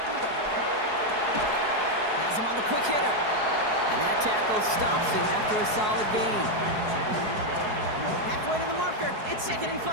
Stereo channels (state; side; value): late; left; 4.7 ms